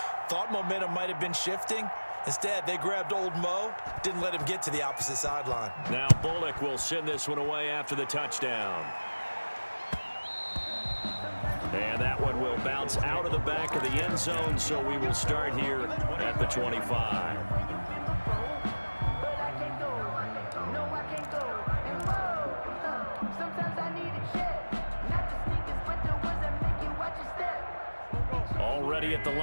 Thought momentum might have been shifting. Instead, they grabbed old Mo, didn't let him get to the opposite sideline. Now Bullock will send this one away after the touchdown. And that one will bounce out of the back of the end zone, so we will start here at the 25. Already at the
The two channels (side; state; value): both; inverted; correlation -1.00